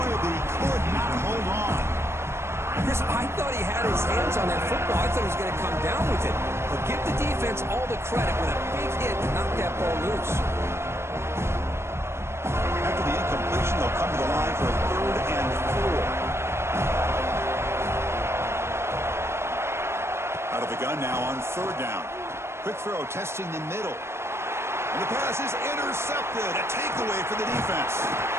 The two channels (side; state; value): left; late; 0.12 ms